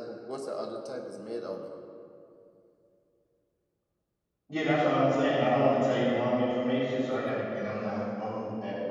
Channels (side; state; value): both; identical; correlation 1.00